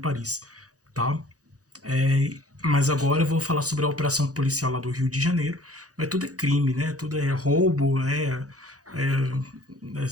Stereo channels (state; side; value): late; left; 0.67 ms